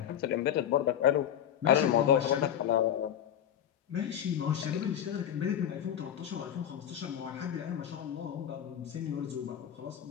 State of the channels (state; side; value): quieter; right; 10.0 dB